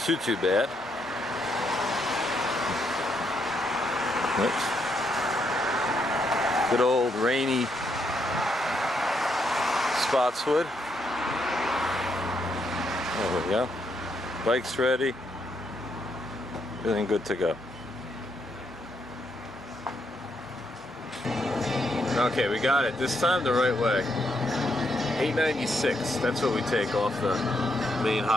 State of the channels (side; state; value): both; normal; correlation 0.77